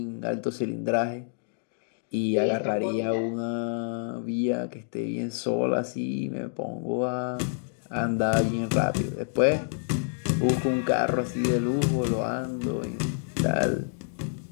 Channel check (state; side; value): silent; right; digital silence